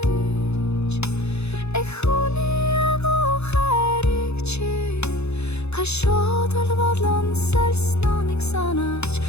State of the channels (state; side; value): late; right; 0.80 ms